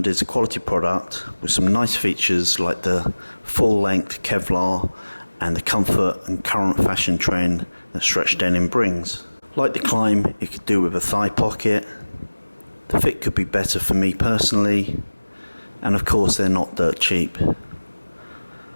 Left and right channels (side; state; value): both; inverted; correlation -1.00